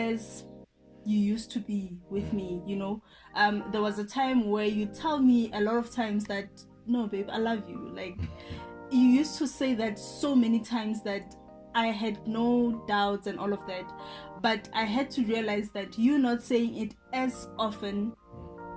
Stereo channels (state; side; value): identical; both; correlation 1.00